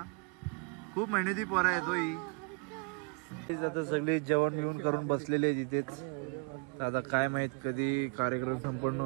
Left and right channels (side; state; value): left; quieter; 33.2 dB